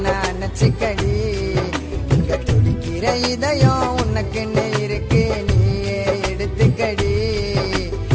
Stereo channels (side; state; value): both; identical; correlation 1.00